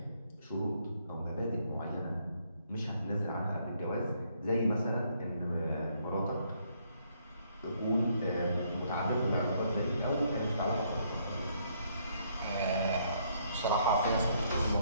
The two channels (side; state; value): both; inverted; correlation -0.69